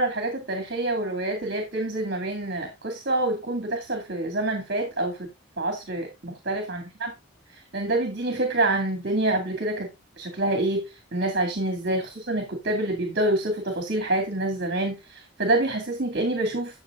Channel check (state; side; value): normal; both; correlation 0.00